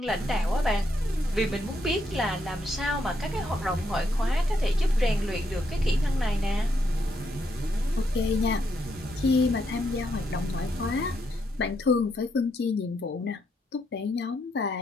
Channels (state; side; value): normal; both; correlation 0.77